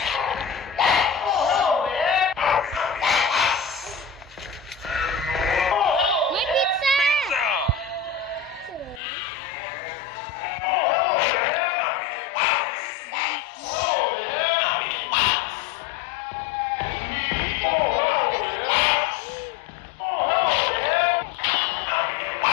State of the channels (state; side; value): drops out; right; at 9.0 s